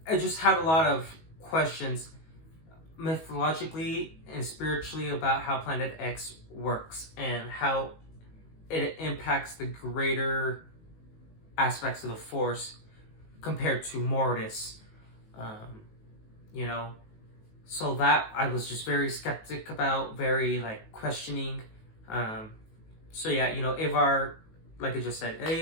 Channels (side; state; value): right; late; 19 ms